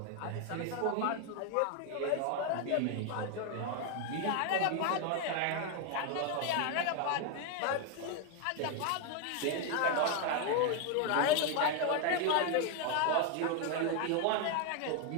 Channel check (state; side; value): different; both; correlation 0.01